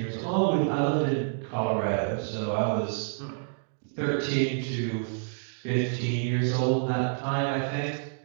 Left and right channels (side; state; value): left; silent; digital silence